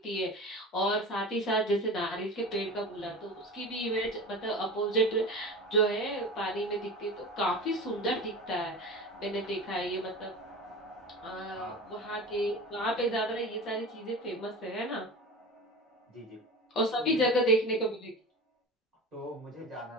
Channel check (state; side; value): normal; both; correlation 0.32